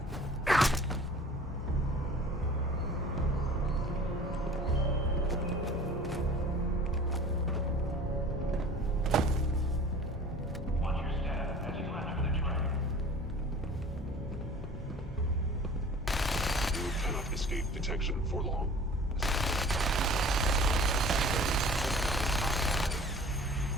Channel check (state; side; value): normal; both; correlation 0.45